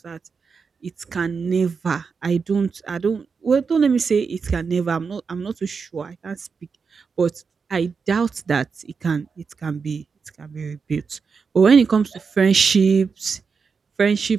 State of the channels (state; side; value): quieter; left; 5.4 dB